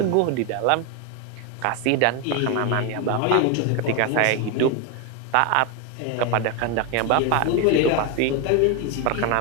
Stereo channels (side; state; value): both; different; correlation 0.01